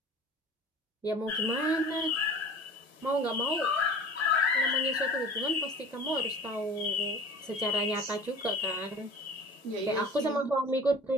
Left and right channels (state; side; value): normal; both; correlation 0.42